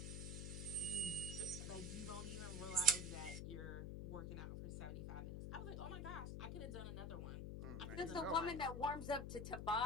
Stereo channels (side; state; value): left; noise; hum, 4 dB below the sound